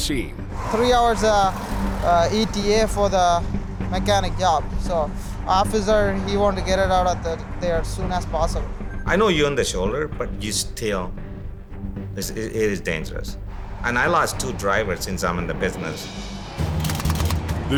3 hours ETA for the mechanic job. So officer, he wanted to get it out of there as soon as possible. I know you're on the shoulder, but you still, it is dangerous. And I lost 2 drivers since I'm in the business. The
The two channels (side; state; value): both; identical; correlation 1.00